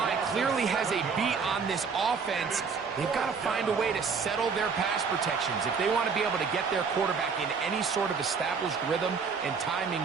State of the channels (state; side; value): quieter; left; 5.5 dB